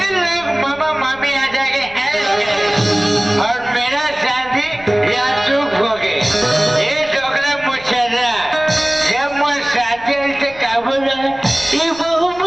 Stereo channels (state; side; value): noise; left; rumble, 22 dB below the sound